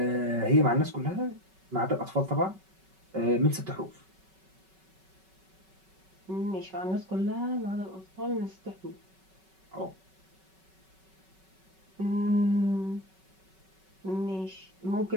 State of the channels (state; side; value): late; left; 5.3 ms